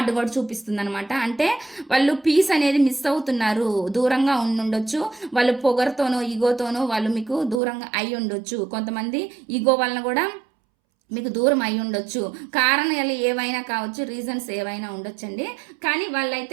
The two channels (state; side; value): drops out; left; at 7.6 s